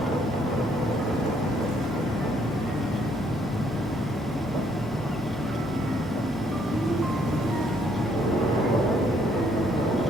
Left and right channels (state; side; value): normal; both; correlation 0.68